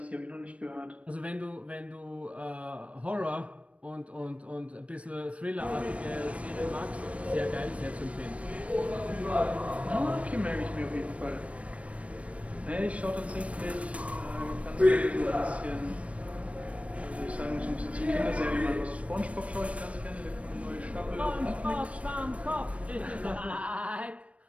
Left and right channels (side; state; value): left; late; 0.064 ms